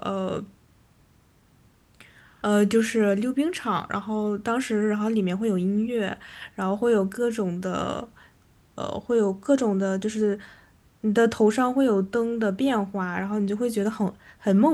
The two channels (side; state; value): both; identical; correlation 1.00